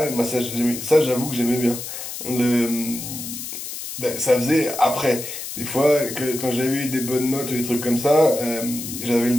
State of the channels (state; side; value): noise; left; hiss, 8 dB below the sound